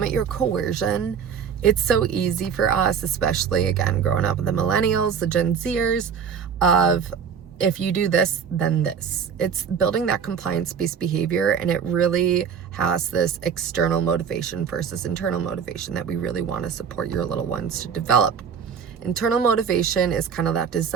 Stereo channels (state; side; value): quieter; left; 7.0 dB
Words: your coercion. It's so easy for us, especially again growing up with the millennials, the Gen Zers, of if you do this, then this. It's building that compliance-based behavior, and it really has this external motivation versus internal motivation that we really want to support your little ones to develop. Internal motivation is kind of that